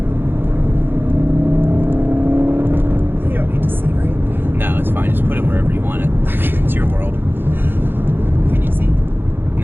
You don't need to see, right? No, it's fine. Just put it wherever you want it. It's your world. Can you see?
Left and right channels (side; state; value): left; late; 0.10 ms